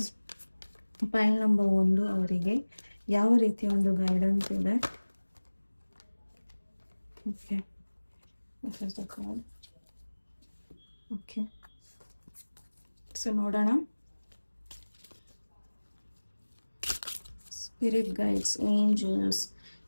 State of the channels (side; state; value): both; inverted; correlation -1.00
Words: ಪೈಲ್ number 1 ಅವರಿಗೆ ಯಾವ ರೀತಿಯ ಒಂದು ಗೈಡೆನ್ಸ್ ಇದೆ? ಓಕೆ, ಓಕೆ, ಸೊ ನೋಡೋಣ. ಸ್ಪಿರಿಟ್ ಗೈಡ್ಸ್, ಏಂಜಲ್ಸ್,